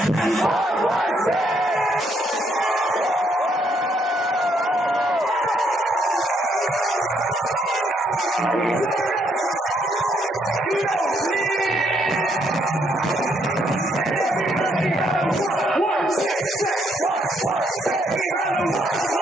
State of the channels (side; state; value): both; normal; correlation 0.72